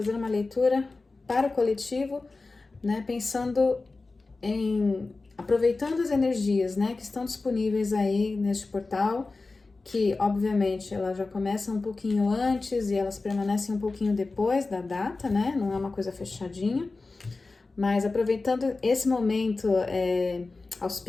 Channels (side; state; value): right; quieter; 3.6 dB